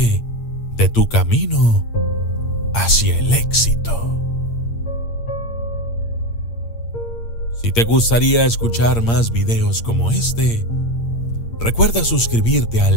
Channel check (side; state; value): right; late; 8.7 ms